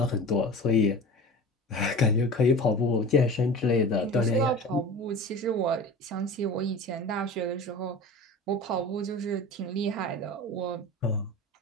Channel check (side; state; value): both; normal; correlation 0.35